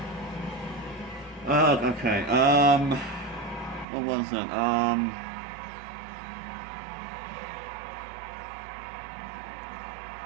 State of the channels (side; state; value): left; drops out; at 3.9 s